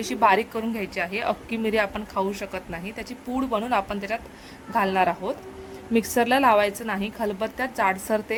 बारीक करून घ्यायची आहे. अख्खी मिरी आपण खाऊ शकत नाही, त्याची पूड बनवून आपण त्याच्यात घालणार आहोत. मिक्सरला लावायचं नाही, खलबत्त्यात जाडसर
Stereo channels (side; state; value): both; identical; correlation 1.00